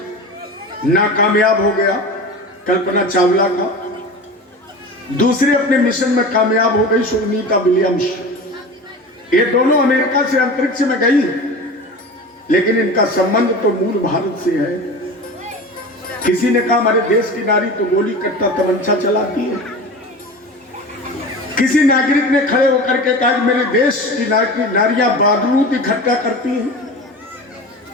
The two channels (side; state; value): both; normal; correlation 0.32